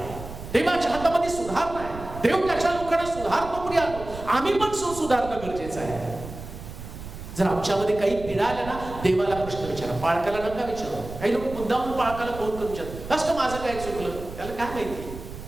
देवाच्या हातामध्ये सुधारणा आहे. देव त्याच्या लोकांना सुधारतो, प्रिय. आम्ही पण सुधारणं गरजेचं आहे. जर आमच्यामध्ये काही पीडा आल्या ना, देवाला प्रश्न विचारा, पाळकाला नका विचारा. काही लोक मुद्दाम पाळकाला कोण विचारतात, असं माझं काय चुकलं, त्याला काय माहिती.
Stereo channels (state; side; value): noise; right; rumble, 12 dB below the sound